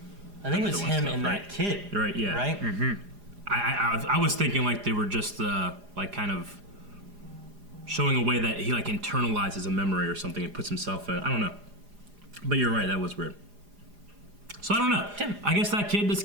I think it was him and that kid. Right? Yeah. Right. Mm-hmm. I was thinking like they were just like kind of showing a way that he like internalizes a memory or something and puts himself in. I don't know. But you're right, that was weird. So I don't know. Tim. I guess that kid just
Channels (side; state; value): left; late; 4.9 ms